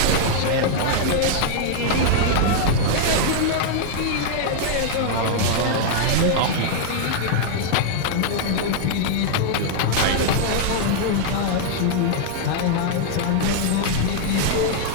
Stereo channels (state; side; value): different; both; correlation -0.01